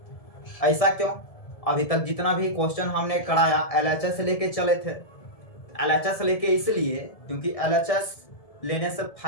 ऐसा क्यों? अभी तक जितना भी क्वेश्चन हमने कराया LHS लेके चले थे, LHS लेके इसलिए क्योंकि LHS लेने से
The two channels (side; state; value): right; late; 1.7 ms